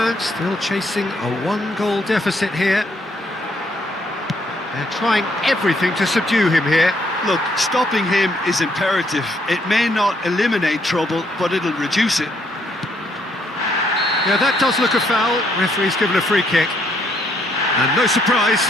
still chasing a one-goal deficit here. They're trying everything to subdue him here. Look, stopping him is imperative. It may not eliminate trouble, but it'll reduce it. Yeah, that does look a foul. Referee's given a free kick. And no surprise,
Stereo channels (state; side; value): normal; both; correlation 0.71